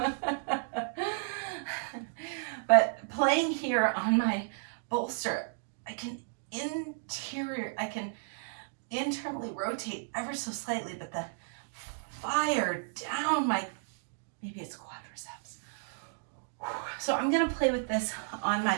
But playing here on my bolster, I can internally rotate ever so slightly, but the fire down my, maybe it's quadriceps. So I'm gonna play with this on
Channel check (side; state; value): left; silent; digital silence